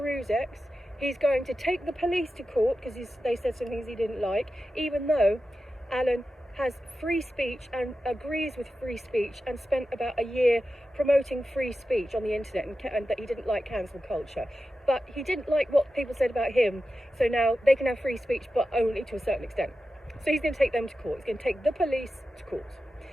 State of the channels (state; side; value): normal; both; correlation 0.92